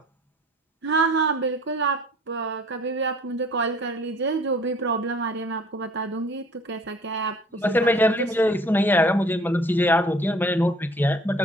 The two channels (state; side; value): normal; both; correlation 0.52